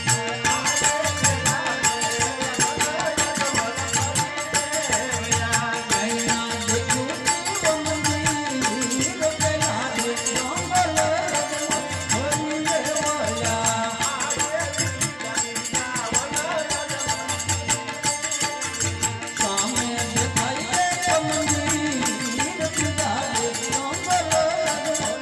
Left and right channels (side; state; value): both; identical; correlation 1.00